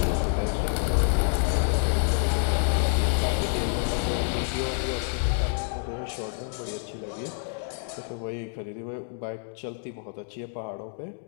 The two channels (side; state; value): right; silent; 60 dB below the other